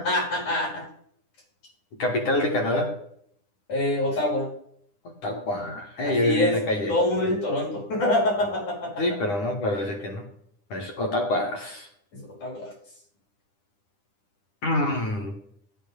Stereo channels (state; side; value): late; right; 9.9 ms